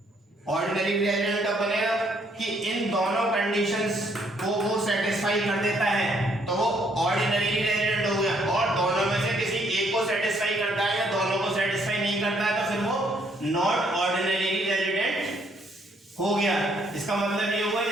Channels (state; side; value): normal; both; correlation 0.68